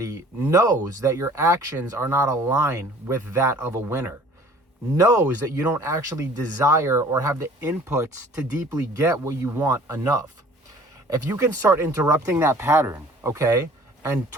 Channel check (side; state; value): both; normal; correlation 0.51